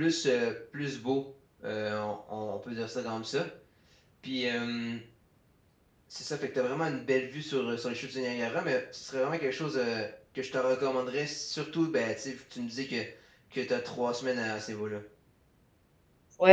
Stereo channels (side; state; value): both; identical; correlation 1.00